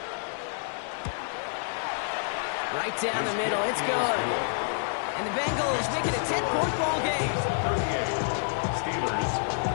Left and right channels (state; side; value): silent; right; 59 dB below the other